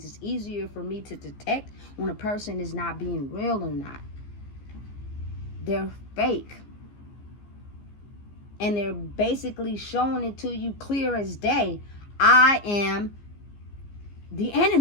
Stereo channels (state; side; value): late; right; 15 ms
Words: it's easier for me to detect when a person is not being real or not. They're fake. And they're basically showing it to you clear as day. I am the